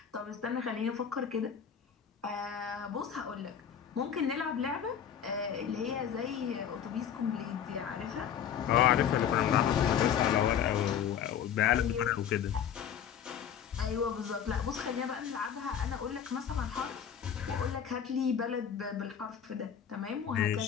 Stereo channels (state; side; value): quieter; right; 8.6 dB